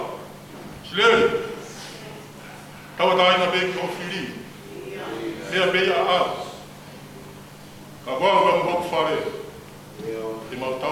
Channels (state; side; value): identical; both; correlation 1.00